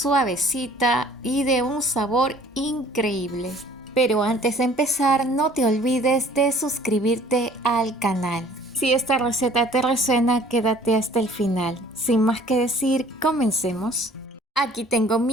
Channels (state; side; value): normal; both; correlation 0.54